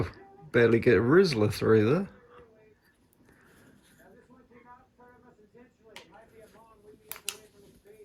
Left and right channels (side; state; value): both; identical; correlation 1.00